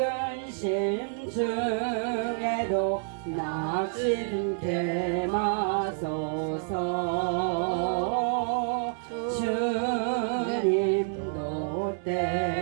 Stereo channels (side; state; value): left; silent; 59 dB below the other